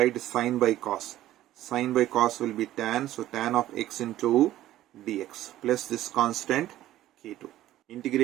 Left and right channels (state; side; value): quieter; left; 14.0 dB